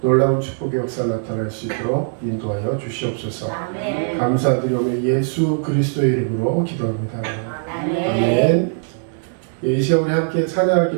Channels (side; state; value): left; silent; digital silence